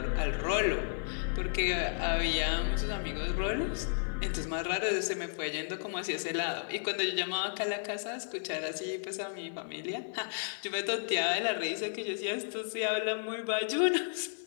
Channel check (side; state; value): right; silent; digital silence